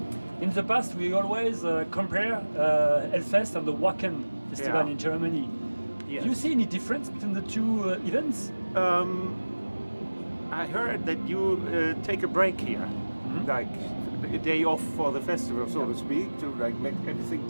In the past, we always compare Hellfest and the Wacken Festival in Germany. Yes. Do you see any difference between the two events? I heard that you take a break here, like a day off for the festival, so to speak, to like make everything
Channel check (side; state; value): both; inverted; correlation -1.00